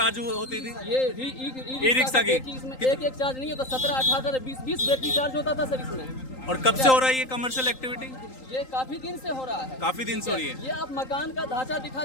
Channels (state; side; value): late; right; 3.8 ms